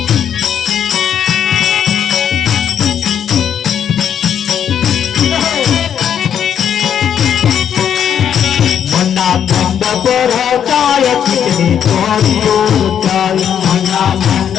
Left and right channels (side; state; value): right; quieter; 8.8 dB